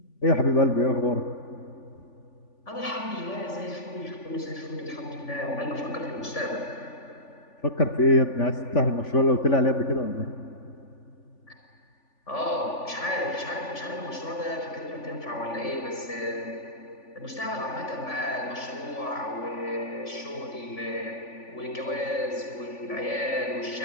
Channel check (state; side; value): late; right; 3.5 ms